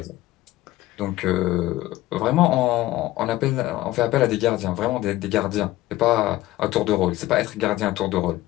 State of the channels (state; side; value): quieter; right; 16.5 dB